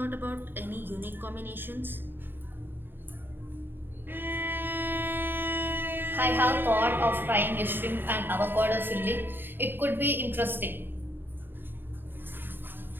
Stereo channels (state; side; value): late; left; 0.096 ms